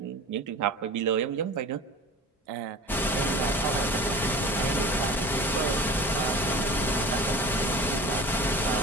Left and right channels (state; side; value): normal; both; correlation 0.39